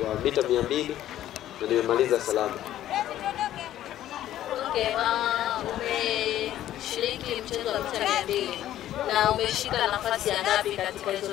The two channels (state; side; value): quieter; right; 12.7 dB